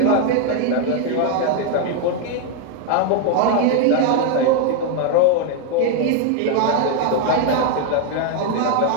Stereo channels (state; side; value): different; both; correlation 0.01